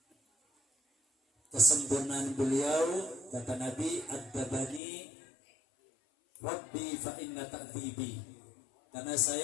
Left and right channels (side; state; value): right; drops out; at 4.8 s